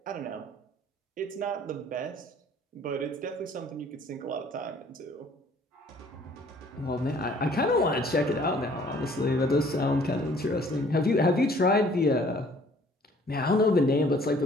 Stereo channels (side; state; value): both; normal; correlation 0.56